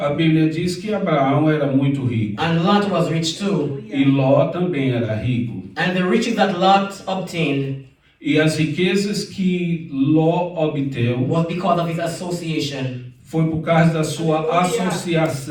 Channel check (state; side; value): identical; both; correlation 1.00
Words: Bíblia diz que Abraão era muito rico. and Lot was rich too. E Ló também era rico. And the riches that Lot obtained E as riquezas que Ló obteve was because of his association foi por causa da sua